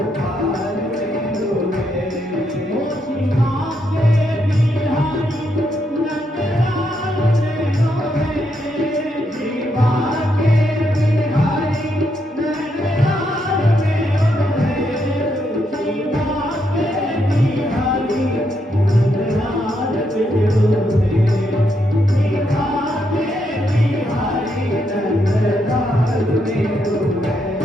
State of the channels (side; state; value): both; normal; correlation 0.79